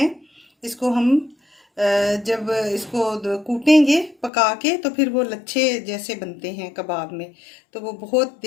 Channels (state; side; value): drops out; right; at 4.3 s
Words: इसको हम जब इसको कूटेंगे पका के तो फिर वो लच्छे जैसे बनते हैं कबाब में, तो वो बहुत